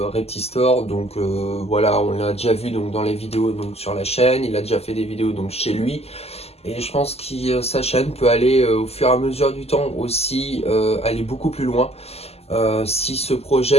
Reptistore, donc voilà, on l'a déjà vu donc dans les vidéos donc sur la chaîne, il a déjà fait des vidéos donc chez lui. Et je pense que sa chaîne peut aller au fur et à mesure du temps aussi aller beaucoup plus loin. S'il se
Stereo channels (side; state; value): right; late; 0.29 ms